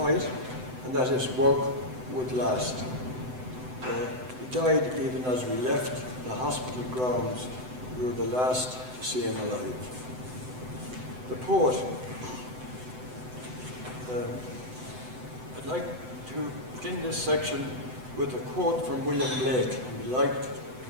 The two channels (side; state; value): left; late; 7.9 ms